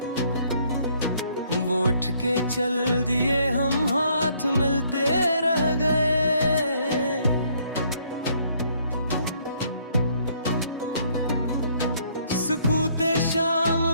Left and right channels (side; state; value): both; inverted; correlation -0.66